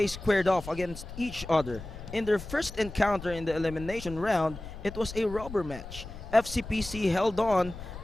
squared off against each other. In their first encounter in the elimination round, it was a rubber match. FCPC held on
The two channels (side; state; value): left; noise; rumble, 13 dB below the sound